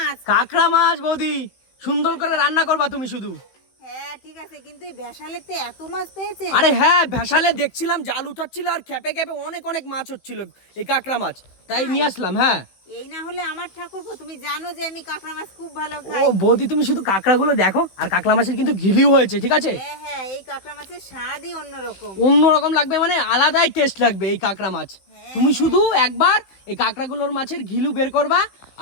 কাঁকড়া মাছ বৌদি, সুন্দর করে রান্না করবা তুমি শুধু। হ্যাঁ ঠিক আছে, কিন্তু এই বেশালেতে এত মাছ পেয়েছে? আরে হ্যাঁ, ভ্যাসালে দেখছিলাম জাল উঠাচ্ছিল আর খেপে খেপে অনেক অনেক মাছ হচ্ছিল, এই কাঁকড়া মাছ, তাই নিয়ে আসলাম। হ্যাঁ, এই না হলে আমার ঠাকুরপো, তুমি জানো যে আমি কাঁকড়া মাছ খুব ভালো ও খাই। বৌদি, তুমি শুধু কাঁকড়াগুলো দেখো, আর কাঁকড়া মাছের কিন্তু ঘিলিও হয়েছে, ঠিক আছে? হ্যাঁ হ্যাঁ, এই কাঁকড়া মাছের স্বাদই অন্যরকম। অন্যরকম লাগবে, মানে আলাদাই টেস্ট লাগবে এই কাঁকড়া মাছ। তুমি শুধু একবার এই কাঁকড়াগুলোর মাছের ঘিলু বের করবা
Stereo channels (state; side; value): late; right; 16 ms